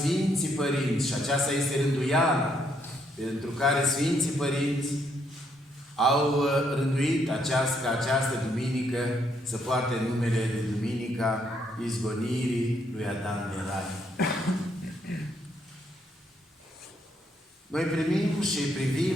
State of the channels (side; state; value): both; normal; correlation 0.73